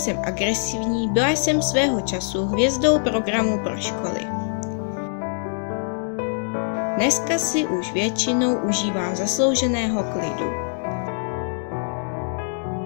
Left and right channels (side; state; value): right; silent; digital silence